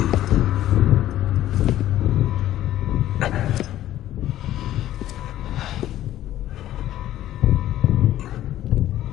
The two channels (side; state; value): right; quieter; 13.3 dB